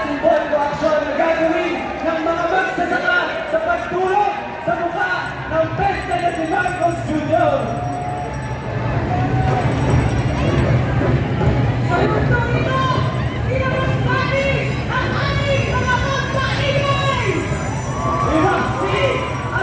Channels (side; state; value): both; identical; correlation 1.00